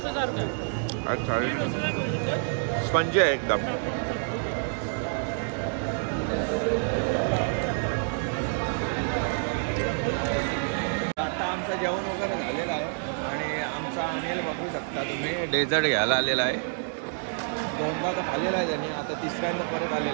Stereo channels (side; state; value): left; silent; 60 dB below the other